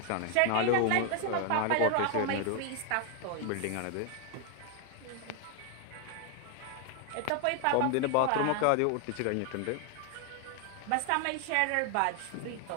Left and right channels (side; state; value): both; different; correlation 0.00